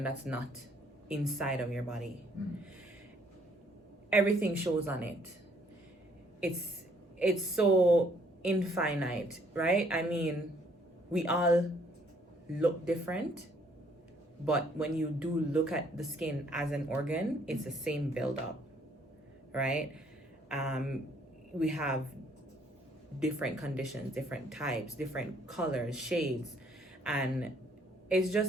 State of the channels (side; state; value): both; normal; correlation 0.64